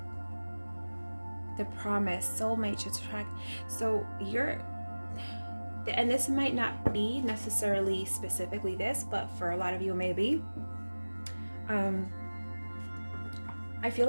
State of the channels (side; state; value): both; inverted; correlation -1.00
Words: the promise, soulmate, attract. So you're, and this might not be necessarily specifically this, but for a lot of you maybe. I feel